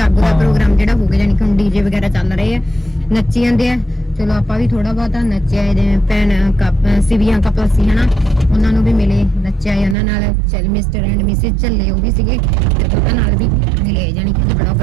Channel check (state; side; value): drops out; left; at 10.0 s